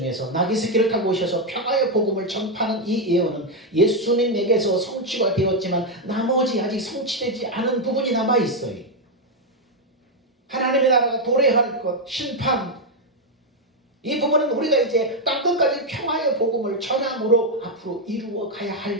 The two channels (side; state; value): both; normal; correlation 0.02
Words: 나귀 새끼를 타고 오셔서 평화의 복음을 전파하는 이 예언은 예수님에게서 성취가 되었지만 나머지 아직 성취되지 않은 부분이 남아 있어요. 하나님의 나라가 도래할 것, 심판, 이 부분은 우리가 이제 땅끝까지 평화의 복음을 전함으로 앞으로 이루어 가야